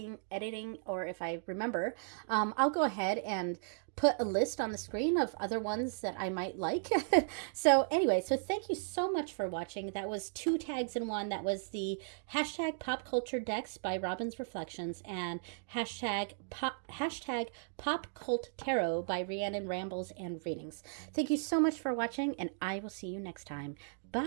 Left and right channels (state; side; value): silent; left; digital silence